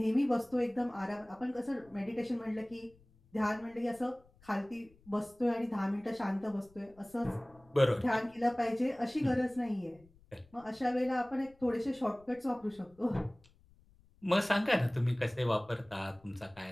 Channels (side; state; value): left; noise; rumble, 29 dB below the sound